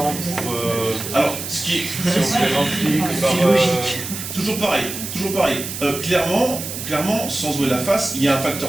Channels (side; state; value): right; noise; hiss, 7 dB below the sound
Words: pour... Alors, ce qui est... Si on se les remplit que par... Toujours pareil. Clairement, sans jouer la face, il y a un